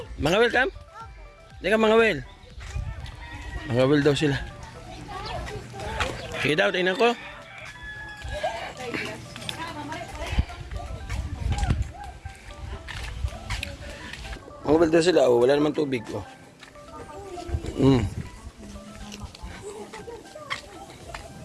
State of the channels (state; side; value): identical; both; correlation 1.00